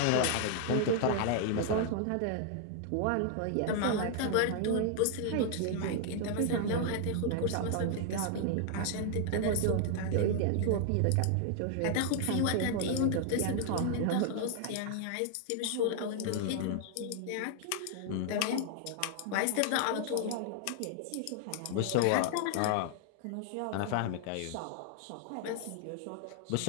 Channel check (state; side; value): different; both; correlation 0.00